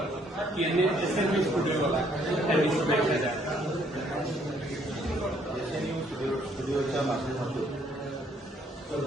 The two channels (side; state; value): both; normal; correlation 0.66